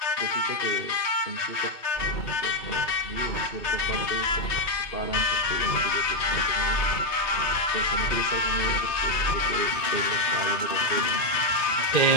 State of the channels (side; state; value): right; late; 3.2 ms